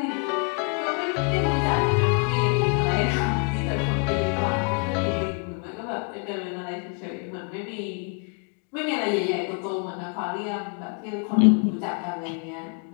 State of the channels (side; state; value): right; quieter; 37.6 dB